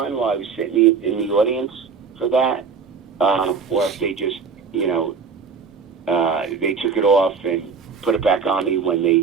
while I was sitting in the audience for that, or if they just they took it off and put it back on me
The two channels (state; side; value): quieter; left; 5.6 dB